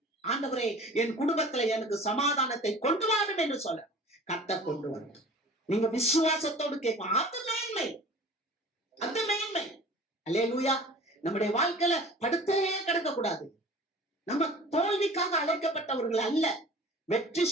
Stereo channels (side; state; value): both; normal; correlation 0.43